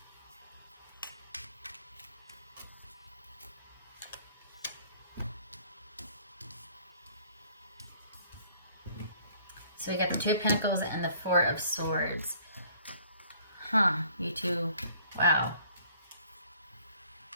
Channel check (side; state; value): both; inverted; correlation -0.58